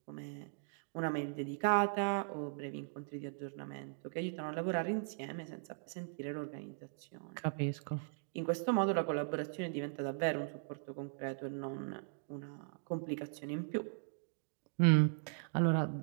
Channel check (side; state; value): left; silent; digital silence